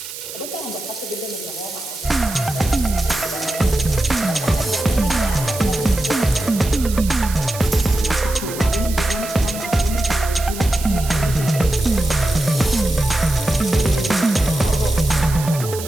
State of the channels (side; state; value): right; noise; hiss, 10 dB below the sound